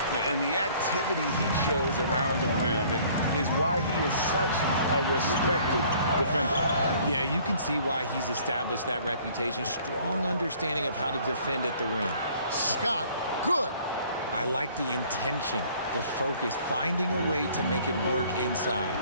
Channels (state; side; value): inverted; both; correlation -0.56